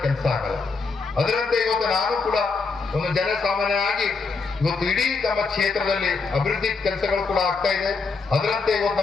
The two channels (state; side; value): quieter; right; 4.4 dB